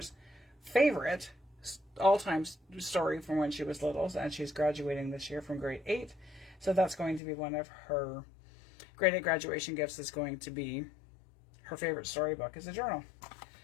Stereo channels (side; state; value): right; drops out; at 7.2 s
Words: favorite all-time story from when she was little, and she's graduating this year from grade 8. So that's going to be one of her grade 8 graduation gifts, is going to be her favorite storybook is a journal.